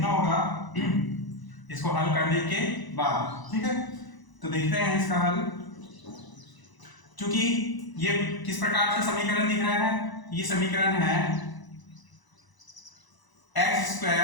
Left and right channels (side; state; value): right; late; 1.0 ms